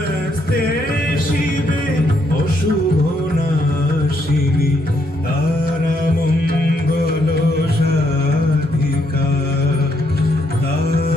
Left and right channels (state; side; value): normal; both; correlation 0.74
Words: শিবে অশুভ নাশিনী তারা মঙ্গল সাধিকা